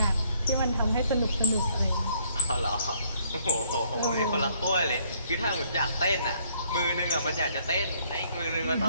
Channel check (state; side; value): inverted; both; correlation -0.65